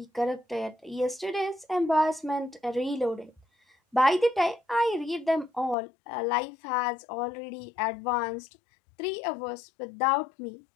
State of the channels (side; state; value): right; drops out; at 5.8 s